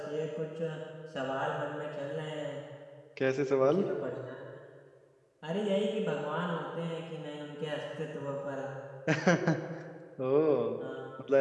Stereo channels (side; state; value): both; identical; correlation 1.00